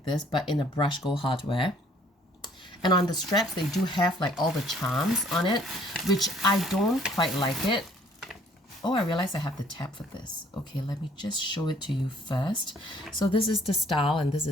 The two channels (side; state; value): both; normal; correlation 0.59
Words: this, but in a brush gold hardware. And on the straps, they do have like all the charms on it, which I don't quite like it. Oh, I realized I have the tab for this. Okay, let me just show it to you first. So this is the style and this